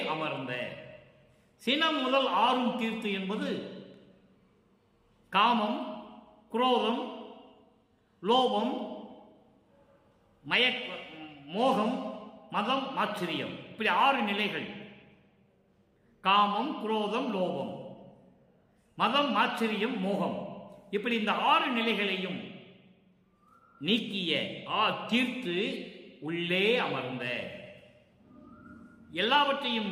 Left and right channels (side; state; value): both; identical; correlation 1.00